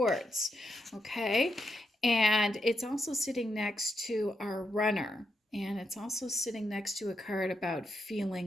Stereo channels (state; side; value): normal; both; correlation 0.83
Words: okay? And it's also sitting next to our Runner. And it's also sitting next to a card about